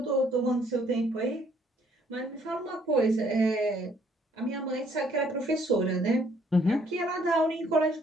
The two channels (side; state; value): both; normal; correlation 0.64